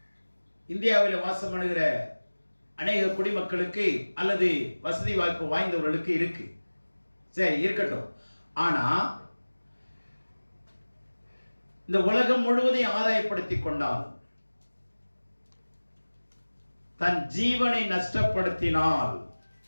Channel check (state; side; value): inverted; both; correlation -1.00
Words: இந்தியாவில் வாசம் பண்ணுகிற அநேக குடிமக்களுக்கு அல்லது வசதி வாய்ப்பு வாய்ந்தவர்களுக்கு இருக்கு. சரி, இருக்கட்டும். ஆனா இந்த உலகம் முழுவதையும் ஆதாயப்படுத்திக் கொண்டாலும் தன் ஜீவனை நஷ்டப்படுத்தினால்